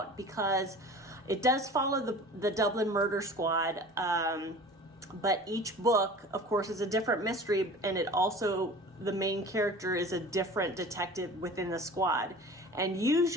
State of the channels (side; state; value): both; normal; correlation 0.40